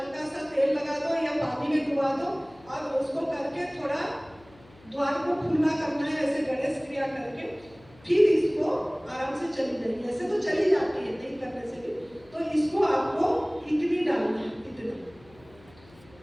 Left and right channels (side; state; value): left; noise; hum, 26 dB below the sound